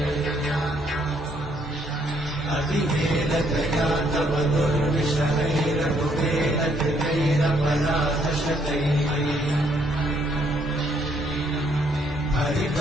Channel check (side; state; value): both; normal; correlation 0.69